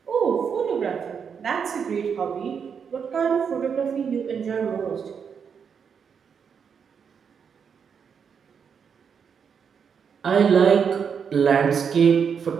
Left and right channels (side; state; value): left; quieter; 6.8 dB